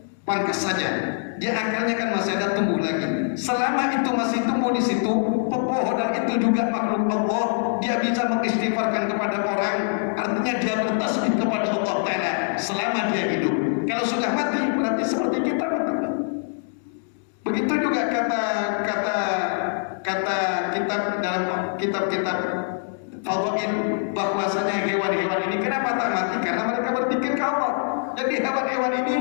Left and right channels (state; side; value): silent; right; digital silence